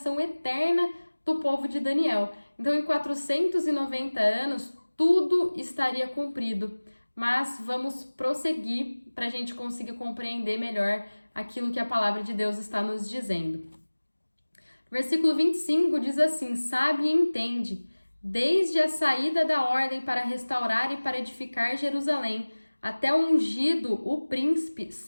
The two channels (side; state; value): both; inverted; correlation -1.00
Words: eterna do povo de Daniel. Então, em 490 anos, tudo estaria cumprido. Mas vamos prosseguir para a gente conseguir compreender melhor aquilo que a palavra de Deus está nos dizendo. Versículo 25 diz assim: sabe e entende, desde a saída da ordem para restaurar e para edificar Jerusalém, até o ungido, o príncipe,